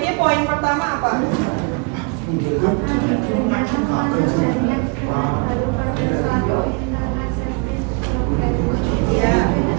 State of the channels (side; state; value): left; quieter; 33.3 dB